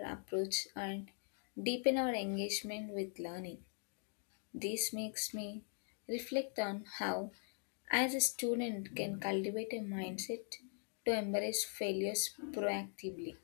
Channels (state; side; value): silent; right; 50 dB below the other